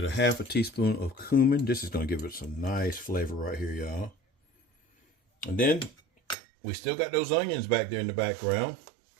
get a half a teaspoon of cumin. This is going to give it some nice flavor right here, y'all. And then we still got those onions back there in the background.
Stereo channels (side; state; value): left; drops out; at 6.4 s